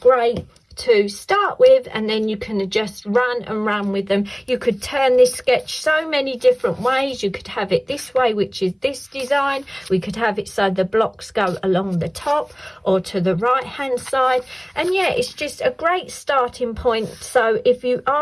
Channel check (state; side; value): identical; both; correlation 1.00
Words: to start with, and then you can just run with them. You could turn this sketch so many different ways. You could have it this way, which is this design. We could have it so the blocks go along the top or to the right hand side. And yeah, it's just a great starting point. So if you